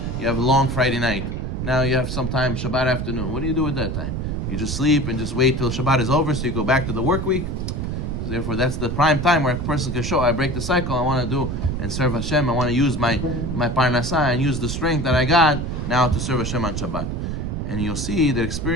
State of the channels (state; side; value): noise; right; rumble, 3 dB below the sound